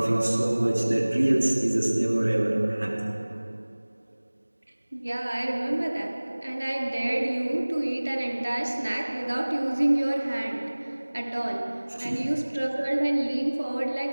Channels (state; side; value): inverted; both; correlation -1.00